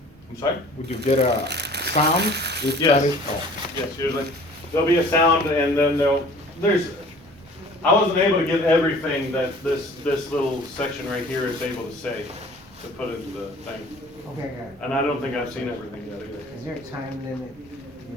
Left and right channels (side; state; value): both; normal; correlation 0.48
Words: I'm sorry? Would you get a sound? If Yes. that is, oh. Yes, usually. There'll be a sound and then I wasn't able to get everything that this little section right here is able to say, to put into the thing. Okay, I got it. And I don't think I've seen everything yet either. Is there a time limit